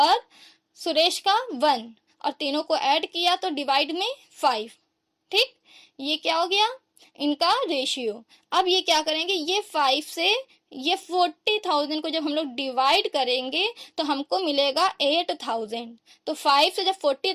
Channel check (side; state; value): both; identical; correlation 1.00